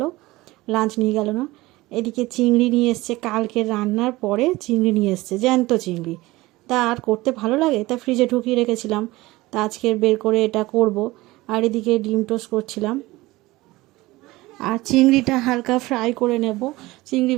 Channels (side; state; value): left; quieter; 19.6 dB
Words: লাঞ্চ নিয়ে গেল না। এদিকে চিংড়ি নিয়ে এসছে, কালকে রান্নার পরে চিংড়ি নিয়ে এসছে, জ্যান্ত চিংড়ি। তা আর করতে ভালো লাগে, তা ফ্রিজে ঢুকিয়ে রেখেছিলাম, তা আজকে বের করে এটা করব। আর এদিকে ডিম টোস্ট করছিলাম, আর চিংড়িটা হালকা ফ্রাই করে নেব। চিংড়ি